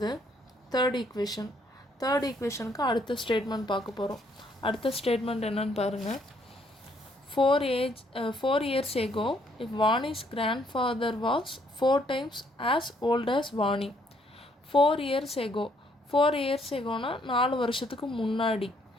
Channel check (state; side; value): normal; both; correlation 0.68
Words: தேர்ட் ஈக்குவேஷனுக்கு அடுத்த ஸ்டேட்மெண்ட் பார்க்க போகிறோம். அடுத்த ஸ்டேட்மெண்ட் என்னன்னு பாருங்கள். 4 years ago, if Vani's grandfather was 4 times as old as Vani. 4 years ago 4 வருஷத்துக்கு முன்னாடி.